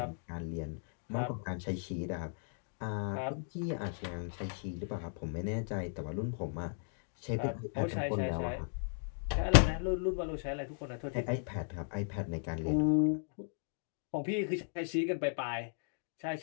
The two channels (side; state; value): right; silent; digital silence